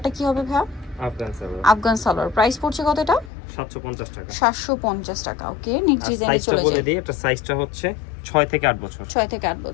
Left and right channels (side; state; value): right; drops out; at 3.3 s